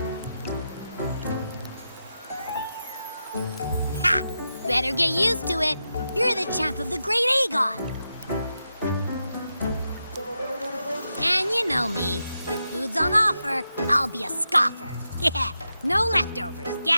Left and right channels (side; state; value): both; inverted; correlation -0.88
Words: Ha! Better get used to it. You're the champ of the Great Aegon. And you know me. If food's on offer, I'll be a scoffer. Yeah, no leftovers,